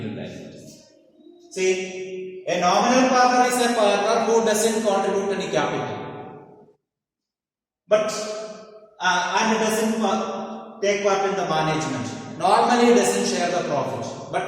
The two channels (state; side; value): identical; both; correlation 1.00